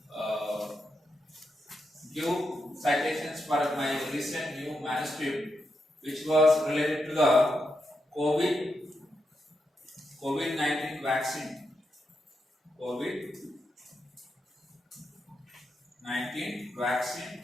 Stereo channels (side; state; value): both; normal; correlation 0.84